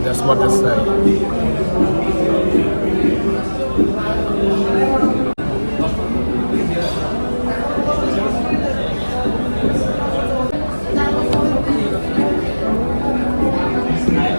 That's what they say.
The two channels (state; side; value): inverted; both; correlation -1.00